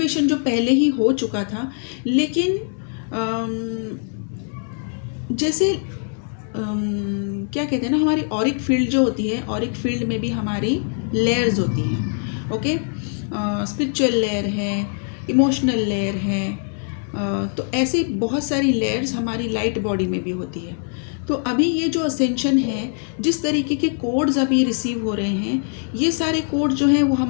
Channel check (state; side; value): silent; right; 57 dB below the other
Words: जो पहले ही हो चुका था, लेकिन जैसे क्या कहते हैं ना, हमारी ऑरिक फील्ड जो होती है, ऑरिक फील्ड में भी हमारी लेयर्स होती हैं। ओके, स्पिरिचुअल लेयर है, इमोशनल लेयर है, तो ऐसे बहुत सारी लेयर्स हमारी लाइट बॉडी में भी होती है। तो अभी ये जो असेंशन है, जिस तरीके के कोड्स अभी रिसीव हो रहे हैं, ये सारे कोड जो हैं वो